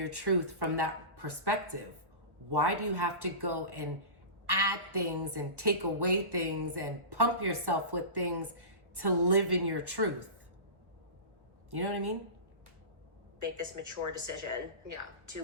truth from that perspective? Why do you have to go and add things and take away things and pump yourself with things to live in your truth? You know what I mean? Make this mature decision to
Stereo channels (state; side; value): late; left; 1.3 ms